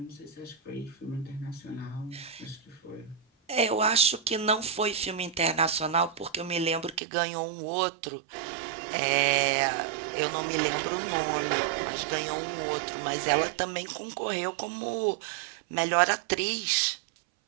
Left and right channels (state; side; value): drops out; left; at 7.0 s